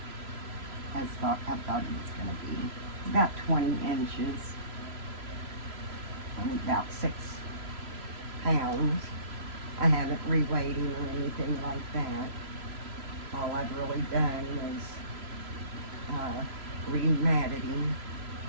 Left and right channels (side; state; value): left; late; 3.0 ms